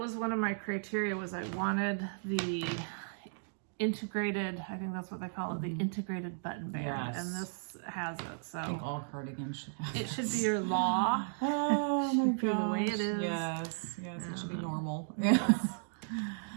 one of my criteria was I wanted the integrated, I think that's what they call it, the integrated button band. Yes. And this has it. So I think all cardigans should have it. Should be your law. Oh my gosh. The way it is. Yes. It should be normal. Yes.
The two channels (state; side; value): silent; left; digital silence